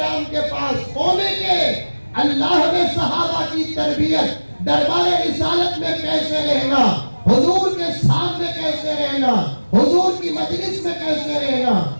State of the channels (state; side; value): inverted; both; correlation -1.00